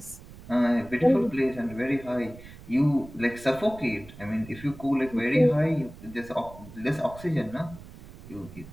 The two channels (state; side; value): noise; right; rumble, 17 dB below the sound